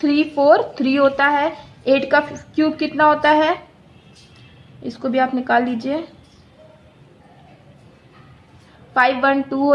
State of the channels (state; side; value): identical; both; correlation 1.00